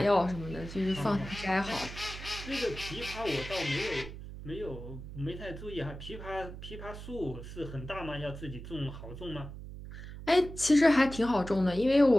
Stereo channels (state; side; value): noise; right; hum, 11 dB below the sound